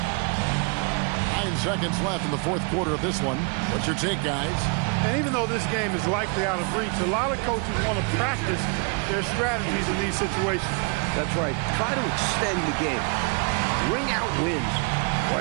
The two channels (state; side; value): quieter; left; 35.1 dB